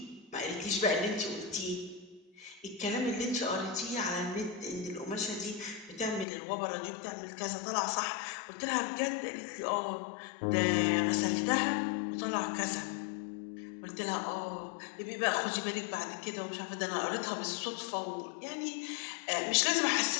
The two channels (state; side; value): drops out; right; at 6.2 s